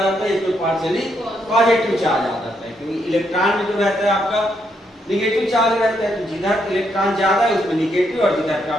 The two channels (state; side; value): normal; both; correlation 0.77